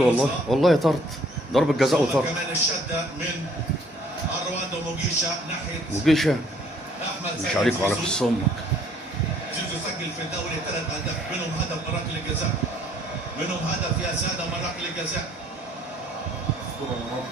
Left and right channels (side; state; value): both; normal; correlation 0.61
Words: والله طرد، ضربة جزاء وطرد. كمان الشده من اروان وموجيشا ناحيه موجيشا احمد مش عليك وعلى قص امك. زيزو سجل في الدوري 3 اهداف، منهم هدف من ركله الجزاء، منهم هدف يا ساده من ركله الجزاء.